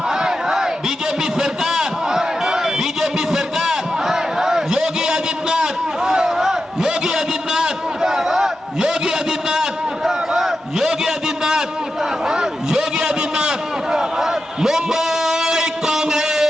बीजेपी सरकार, बीजेपी सरकार, योगी आदित्यनाथ, योगी आदित्यनाथ, योगी आदित्यनाथ, योगी आदित्यनाथ, योगी आदित्यनाथ, मुंबई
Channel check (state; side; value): normal; both; correlation 0.90